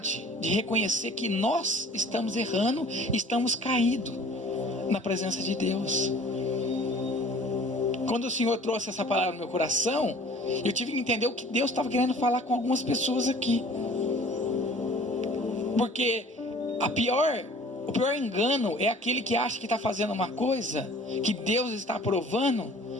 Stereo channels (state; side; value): normal; both; correlation 0.49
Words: de reconhecer que nós estamos errando, estamos caídos na presença de Deus. Quando o Senhor trouxe essa palavra no meu coração, eu tive que entender o que Deus estava querendo falar com algumas pessoas aqui, porque o pior engano é aquele que acha que está fazendo uma coisa que Deus está aprovando